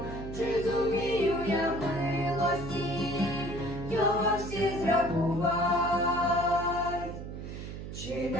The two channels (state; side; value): noise; right; hum, 9 dB below the sound